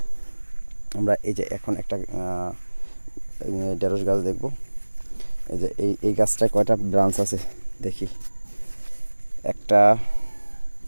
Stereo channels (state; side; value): inverted; both; correlation -1.00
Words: আমরা এই যে এখন একটা ঢেঁড়স গাছ দেখব। এই যে এই গাছটায় কয়টা ব্রাঞ্চ আছে দেখি। 1টা